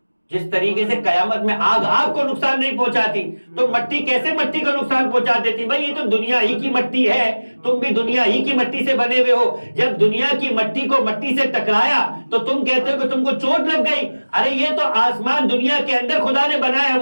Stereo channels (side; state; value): both; inverted; correlation -1.00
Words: جس طریقے سے قیامت میں آگ کو نقصان نہیں پہنچاتی، تو مٹی کیسے مٹی کو نقصان پہنچا دیتی؟ بھائی یہ تو دنیا ہی کی مٹی ہے، تم بھی دنیا ہی کی مٹی سے بنے ہوئے ہو. جب دنیا کی مٹی کو مٹی سے ٹکرایا تو تم کہتے ہو کہ تم کو چوٹ لگ گئی. ارے یہ تو آسمان دنیا کے اندر خدا نے بنایا ہے،